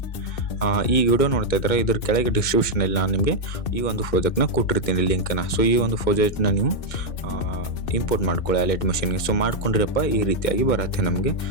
ಈ ವಿಡಿಯೋ ನೋಡ್ತಾ ಇದ್ದಾರೆ, ಇದ್ರ ಕೆಳಗೆ ಡಿಸ್ಕ್ರಿಪ್ಷನಲ್ಲಿ ನಾನು ನಿಮಗೆ ಈ ಒಂದು ಪ್ರಾಜೆಕ್ಟ್ನ ಕೊಟ್ಟಿರ್ತೀನಿ ಲಿಂಕನ್ನು. ಸೊ ಈ ಒಂದು ಪ್ರಾಜೆಕ್ಟ್ನ ನೀವು ಇಂಪೋರ್ಟ್ ಮಾಡ್ಕೊಳ್ಳಿ ಅಲೈಟ್ ಮಿಷನ್ಗೆ. ಸೊ ಮಾಡ್ಕೊಂಡಿರಪ್ಪ ಈ ರೀತಿಯಾಗಿ ಬರುತ್ತೆ ನಮಗೆ.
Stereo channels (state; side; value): late; right; 2.2 ms